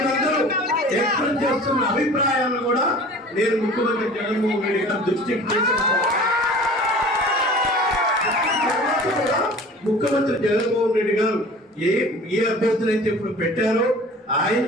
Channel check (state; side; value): normal; both; correlation 0.43